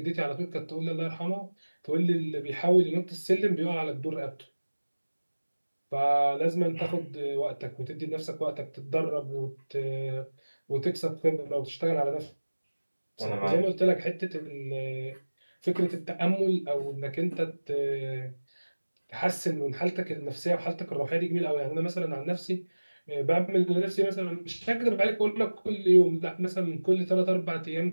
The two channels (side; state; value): both; inverted; correlation -1.00